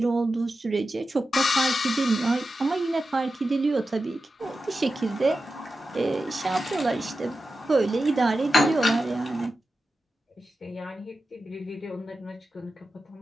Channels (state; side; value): normal; both; correlation 0.92